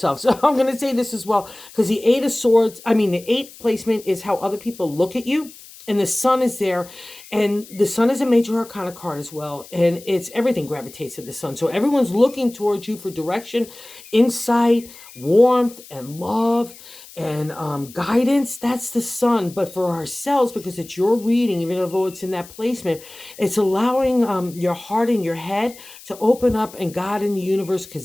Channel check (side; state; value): left; noise; hiss, 19 dB below the sound